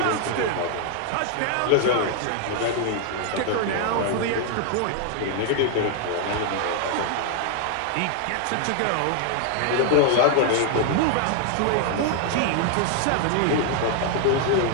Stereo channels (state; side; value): different; both; correlation 0.00